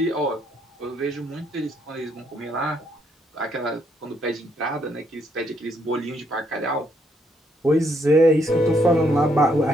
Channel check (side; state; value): both; normal; correlation 0.73